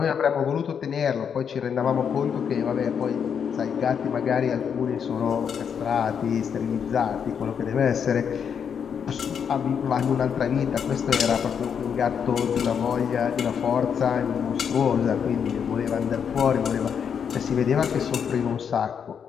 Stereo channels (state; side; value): quieter; right; 7.4 dB